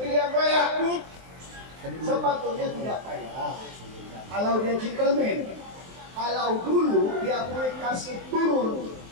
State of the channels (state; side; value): late; left; 23 ms